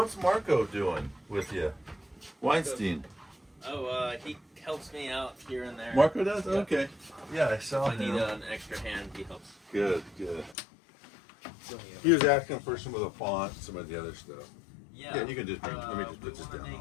Marco doing with you? Weinstein. Oh, he helps me out here and there. Marco does? Yeah. Okay. Yeah, I saw If I need him. an extra hand, he helps. Good. He was asking for some of the font, some of the other stuff. Yeah, you can just bring, let me just put this we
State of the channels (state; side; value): drops out; right; at 10.6 s